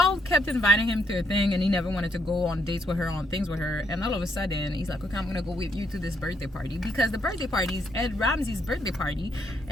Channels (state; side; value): normal; both; correlation 0.74